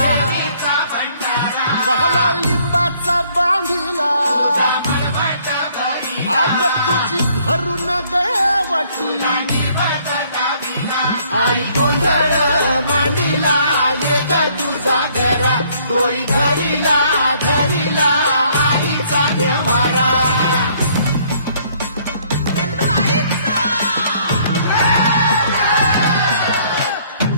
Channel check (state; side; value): inverted; both; correlation -0.63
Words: बहला लिंबाचा बांधिला आग तुझी भरून गवटी आई गोंधळ मांडीला ये ग तुझा घरा डोई धरीला धरीला आईचा देवारा गल्लू आईचा